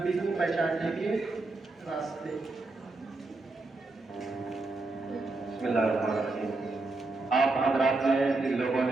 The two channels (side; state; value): left; quieter; 3.3 dB